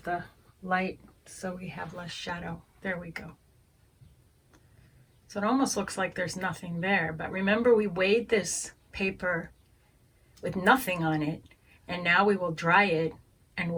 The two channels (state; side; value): identical; both; correlation 1.00